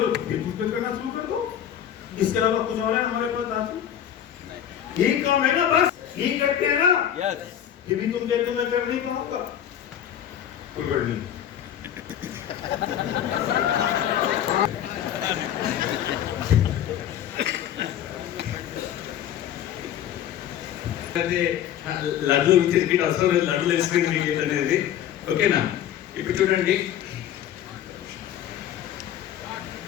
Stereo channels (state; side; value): quieter; right; 10.4 dB